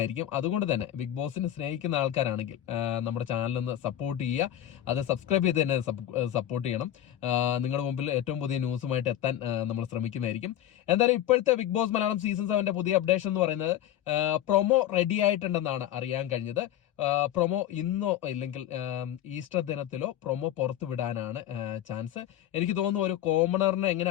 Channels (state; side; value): quieter; right; 11.8 dB